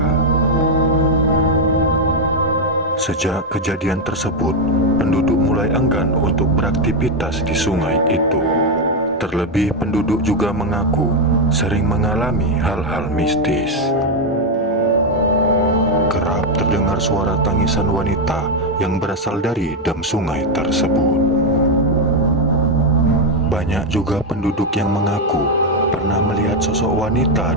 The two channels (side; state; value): both; normal; correlation 0.04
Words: Sejak kejadian tersebut, penduduk mulai enggan untuk beraktivitas di sungai itu. Terlebih penduduk juga mengaku sering mengalami hal-hal mistis. Kerap terdengar suara tangisan wanita yang berasal dari dam sungai tersebut. Banyak juga penduduk yang mengaku pernah melihat sosok wanita